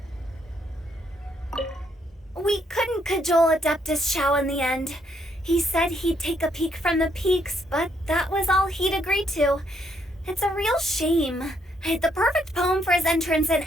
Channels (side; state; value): both; normal; correlation 0.73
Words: We couldn't cajole Adeptus Shao in the end. He said he'd take a peek from the peaks, but that was all he'd agreed to. It's a real shame. I had the perfect poem for his entrance and